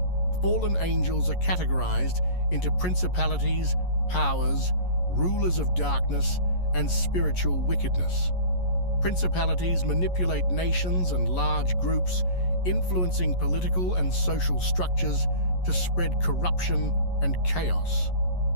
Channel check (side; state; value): right; late; 11 ms